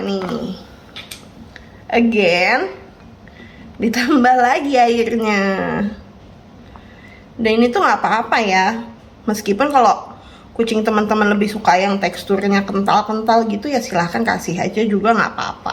nih. Again, ditambah lagi airnya. Dan ini tuh nggak apa-apa ya, meskipun kalau kucing teman-teman lebih suka yang teksturnya kental-kental gitu ya silahkan kasih aja juga nggak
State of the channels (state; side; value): identical; both; correlation 1.00